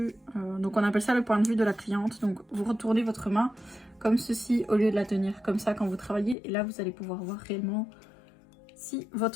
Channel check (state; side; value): drops out; right; at 6.4 s